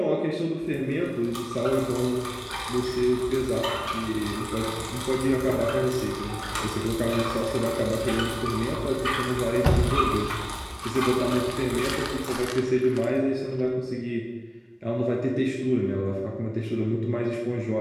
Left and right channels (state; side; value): identical; both; correlation 1.00